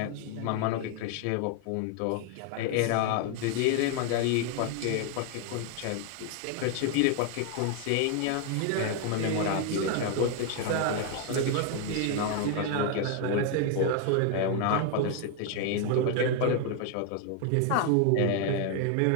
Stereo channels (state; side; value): different; both; correlation 0.00